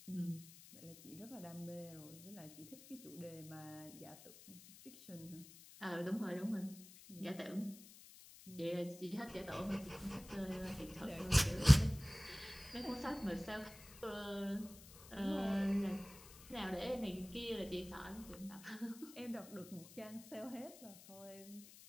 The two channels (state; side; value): noise; left; hiss, 18 dB below the sound